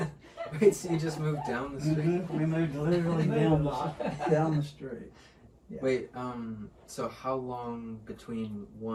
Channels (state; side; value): identical; both; correlation 1.00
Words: Wait, so you just moved down the street? We moved literally down the street. Yeah. Wait, so how long between